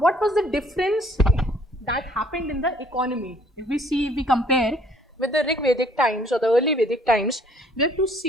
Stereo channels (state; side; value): normal; both; correlation 0.60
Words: was the difference that happened in the economy? If we compare with the Rig Vedic times or the early Vedic times, we have to